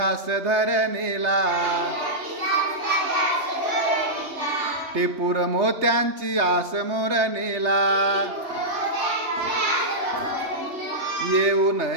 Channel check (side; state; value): left; late; 3.3 ms